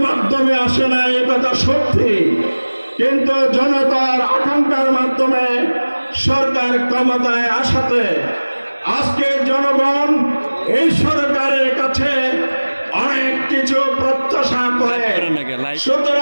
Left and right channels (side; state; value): both; inverted; correlation -1.00